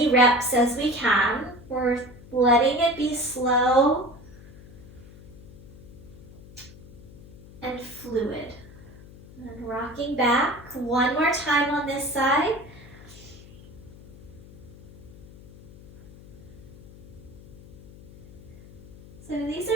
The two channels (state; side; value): noise; left; hum, 19 dB below the sound